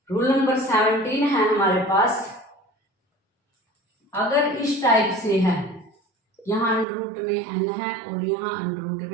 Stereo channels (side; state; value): left; drops out; at 6.9 s